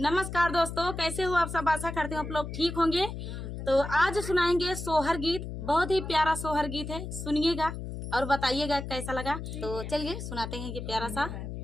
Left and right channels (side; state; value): left; noise; hum, 7 dB below the sound